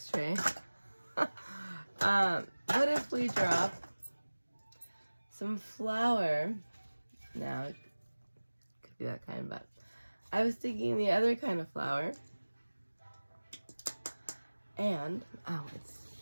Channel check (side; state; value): both; inverted; correlation -1.00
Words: tray? What if we drop some flour? Now, it could be that kind, but I was thinking the other kind of flour. And, I